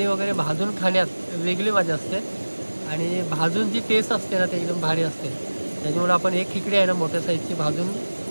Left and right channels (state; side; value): inverted; both; correlation -1.00